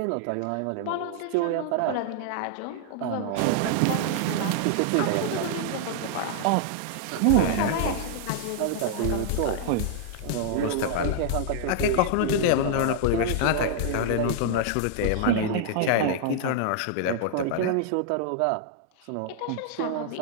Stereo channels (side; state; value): both; different; correlation -0.01